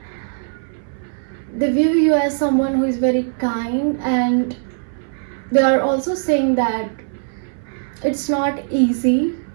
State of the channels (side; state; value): left; silent; 62 dB below the other